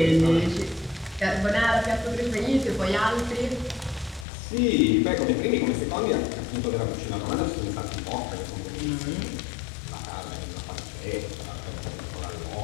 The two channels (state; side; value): drops out; right; at 4.2 s